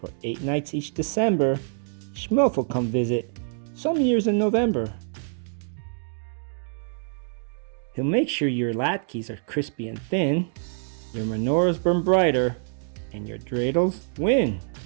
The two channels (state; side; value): silent; left; digital silence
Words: 8 nights each December, Shmelf will come visit, some years in November. He'll make sure your latkes are crispy and thin, your menorahs burn brighter, and your dreidels win.